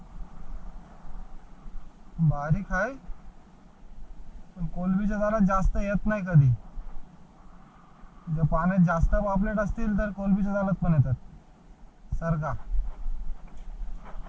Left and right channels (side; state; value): both; identical; correlation 1.00